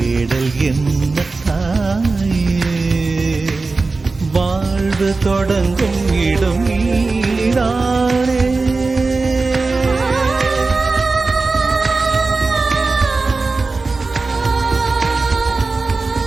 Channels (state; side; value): quieter; left; 3.8 dB